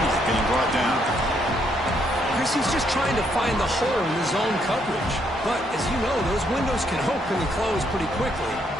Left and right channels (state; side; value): normal; both; correlation 0.73